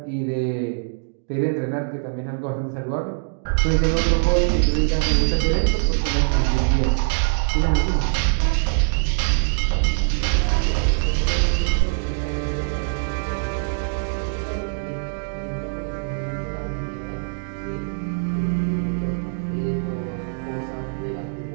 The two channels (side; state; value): left; silent; digital silence